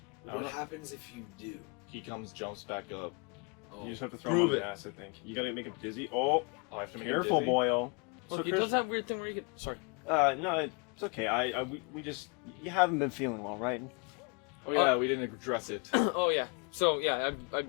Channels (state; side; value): quieter; right; 34.3 dB